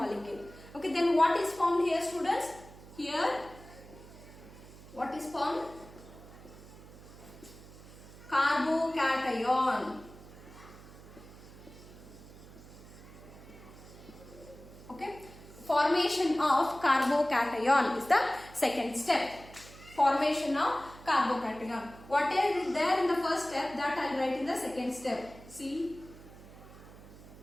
Okay, then what is formed here, students? Here, what is formed? Carbocation. Okay, formation of carbocation is the second step. Formation of carbocation. What is there in the first step, that I will write in the second step. C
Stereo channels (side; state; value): right; noise; hum, 18 dB below the sound